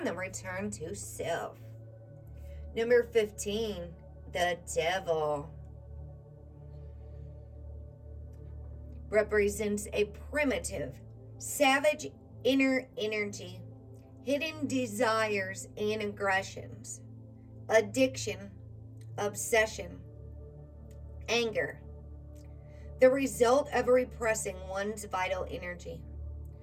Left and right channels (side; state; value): both; identical; correlation 1.00